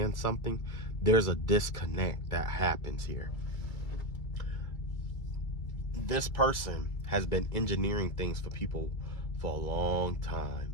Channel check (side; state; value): right; late; 2.3 ms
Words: something, there's a disconnect that happens here. This person has been engineering things for people for a long time,